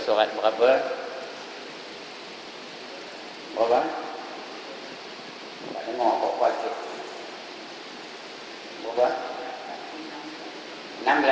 surat berapa? Berapa? Tak dengar kok baca. Berapa?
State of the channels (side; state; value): both; identical; correlation 1.00